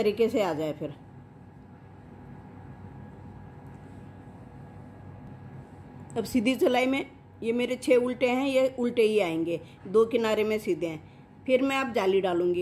से आ जाए। फिर अब सीधी सिलाई में ये मेरे 6 उल्टे हैं, ये उल्टे ही आएंगे, 2 किनारे में सीधे हैं। फिर मैं अब जाली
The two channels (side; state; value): both; identical; correlation 1.00